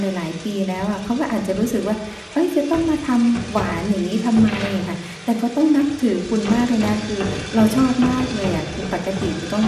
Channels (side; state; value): both; identical; correlation 1.00